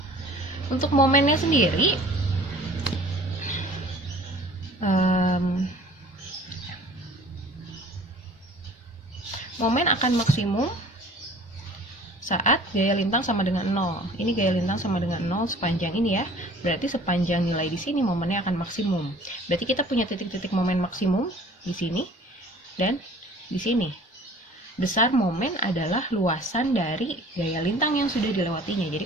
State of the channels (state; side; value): normal; both; correlation 0.48